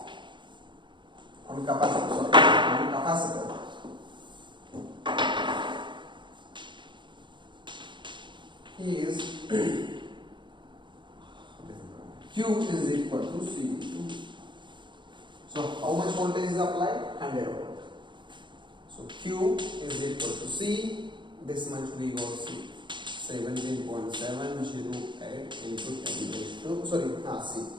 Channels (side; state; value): left; late; 0.23 ms